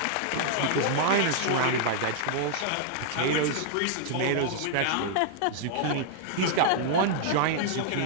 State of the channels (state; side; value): different; both; correlation -0.01